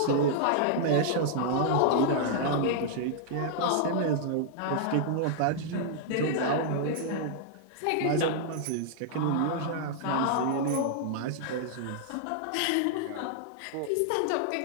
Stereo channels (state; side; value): different; both; correlation -0.01